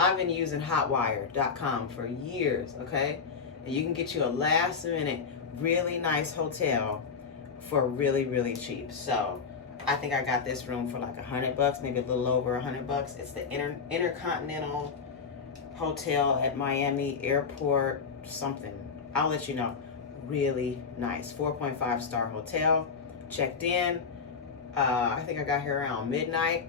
been using hotwire.com for years, okay? And you can get you a last minute, really nice hotel for really, really cheap. So I think I got this room for like $100, maybe a little over $100. It's the Intercontinental Hotel at Miami Airport, something. I'll let you know. Really nice, 4.5 star hotel. Checked in. I think I got here around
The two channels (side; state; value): right; quieter; 5.6 dB